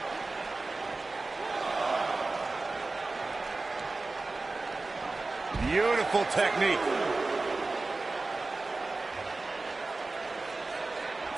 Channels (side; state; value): left; quieter; 3.4 dB